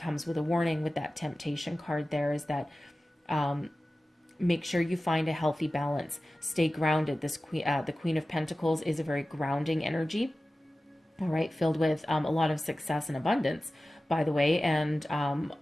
with a warning with that temptation card there, is that make sure you find a healthy balance. Stay grounded. This the Queen of Pentacles is a very grounding energy, all right, filled with a lot of success and abundance, by the way, and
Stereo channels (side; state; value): both; normal; correlation 0.96